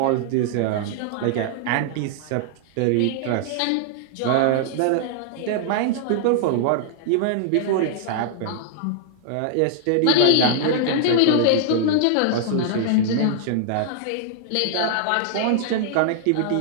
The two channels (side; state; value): both; different; correlation -0.01